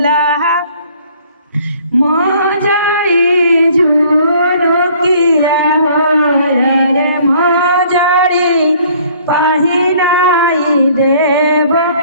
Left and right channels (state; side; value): inverted; both; correlation -0.57